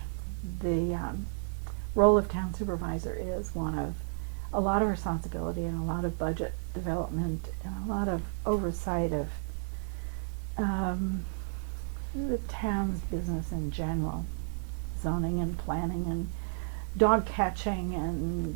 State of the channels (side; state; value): left; silent; 56 dB below the other